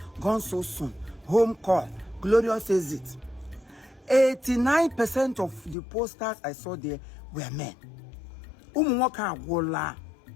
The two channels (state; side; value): drops out; right; at 5.8 s